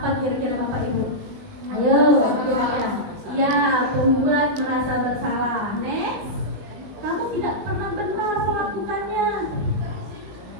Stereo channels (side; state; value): left; late; 19 ms